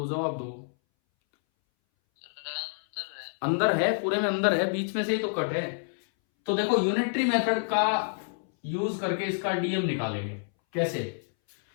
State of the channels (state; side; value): silent; right; 59 dB below the other